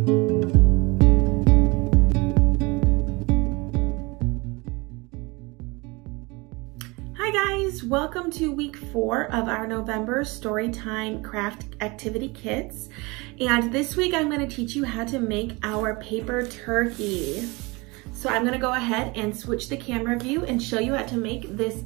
guys, welcome to week 4 of our November Storytime craft activity kits. And this week I'm going to teach you how to make our paper turkey. So I'm going to go ahead and switch the camera view and show you how to make this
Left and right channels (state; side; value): quieter; left; 25.5 dB